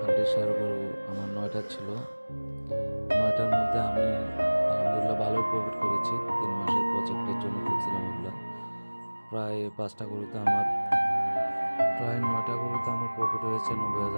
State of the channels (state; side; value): inverted; both; correlation -1.00